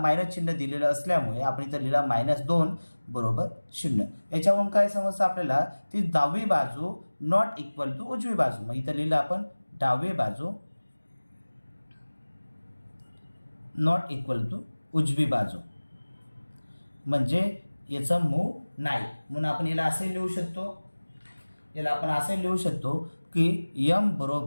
चिन्ह दिलेलं असल्यामुळे आपण इथं लिहिला -2 बरोबर 0. याच्यावरून काय समजतं आपल्याला, ती डावी बाजू नॉट इक्वल टू उजवी बाजू. मग इथं लिहिलं आपण डावी बाजू नॉट इक्वल टू उजवी बाजू, म्हणजे याचं मूळ नाही. म्हणून आपण याला असे लिहू शकतो, याला आपण असे लिहू शकतो की m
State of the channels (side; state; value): both; inverted; correlation -1.00